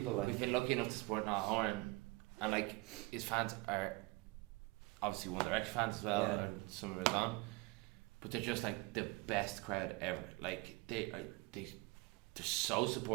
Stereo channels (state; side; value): quieter; left; 24.6 dB